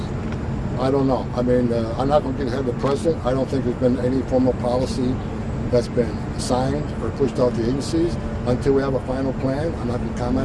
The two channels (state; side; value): identical; both; correlation 1.00